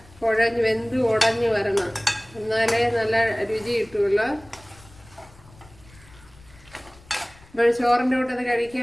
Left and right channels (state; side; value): noise; left; rumble, 24 dB below the sound